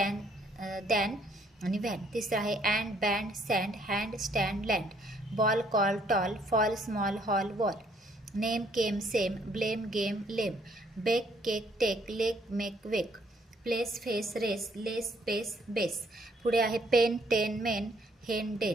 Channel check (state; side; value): normal; both; correlation 0.66